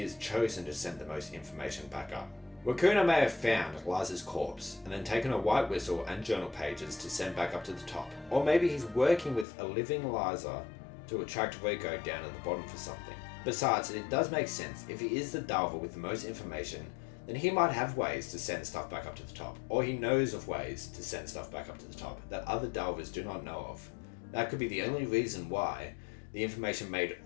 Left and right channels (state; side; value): drops out; right; at 9.5 s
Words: is chosen to send the most information back up. Wakuna may have found Liza's corpse and then taken a white whistle and journal pages to send back up to the top. Or maybe he's working with a living Liza to attract Riko down at the bottom for something. Besides, it does make sense. If he is the diver with the most information, then he might have ways to send stuff back up to the top. Or he knows of ways to send stuff back up to the top that other divers do not know of. That could be the only reason why the information made